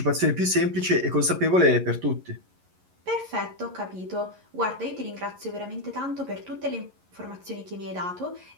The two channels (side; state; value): left; late; 11 ms